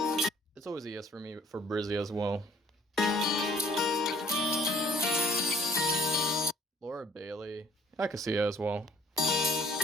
It's always a yes for me for Brizzy as well. Laura Bailey. I can see her as well.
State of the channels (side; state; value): both; normal; correlation 0.60